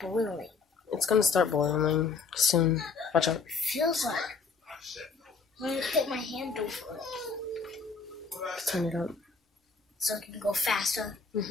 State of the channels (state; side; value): quieter; right; 4.9 dB